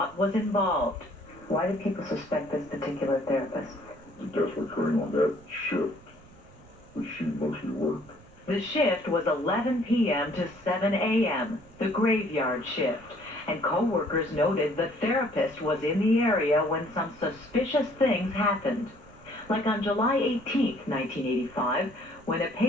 was involved. Why do people suspect this particular therapist? The deaths were occurring on that shift, which she mostly worked. The shift was 11 p.m. to 7 a.m., the graveyard shift. And co-workers noted the therapist was in the area when some suspicious things happened. Like on July 18, 1985, when a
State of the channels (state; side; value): noise; right; rumble, 23 dB below the sound